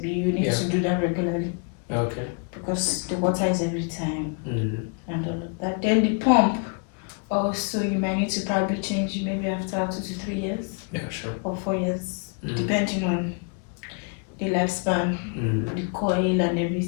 you need to do that regularly. Okay. Because the water is every time and all of that. Then the pump, also you might need to probably change maybe after 2 to 3 years. Yeah, sure. Or 4 years, depending on the lifespan, the coil and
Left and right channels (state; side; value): quieter; right; 37.6 dB